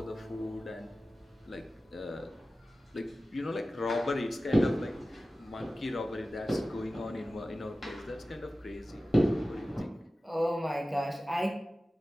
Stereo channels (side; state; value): both; normal; correlation 0.95